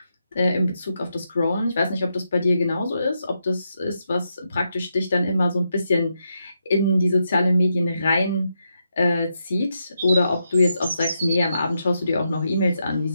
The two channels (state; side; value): inverted; both; correlation -0.82